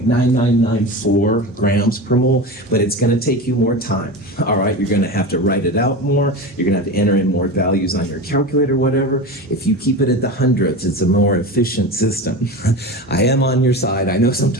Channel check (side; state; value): both; normal; correlation 0.26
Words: grams per mole, but it's going to take you more time. All right, you're going to have to write it out more. You're going to have to enter in more values on your calculator, whatever. If you keep it at the hundredths, it's a more efficient system. I am on your side. I know